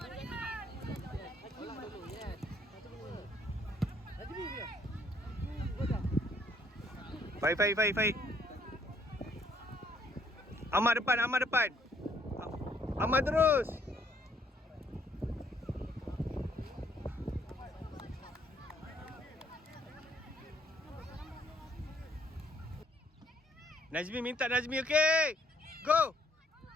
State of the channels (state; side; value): normal; both; correlation 0.66